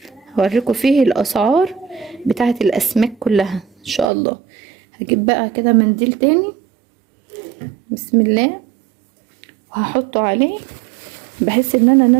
هوريكم فيه الاسعار بتاعه الاسماك كلها ان شاء الله. هجيب بقى كده منديل تاني، بسم الله، وهحطه عليه بحيث ان انا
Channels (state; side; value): drops out; left; at 4.1 s